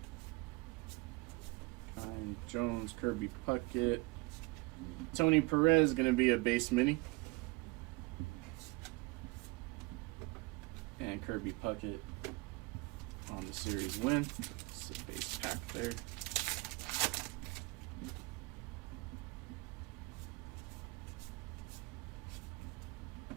Jones, Kirby Puckett. Tony Perez going to be a base mini. And Kirby Puckett on the series win. It's a base pack there.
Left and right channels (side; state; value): left; quieter; 24.9 dB